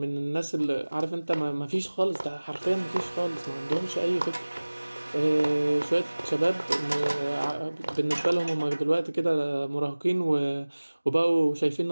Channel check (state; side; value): inverted; both; correlation -1.00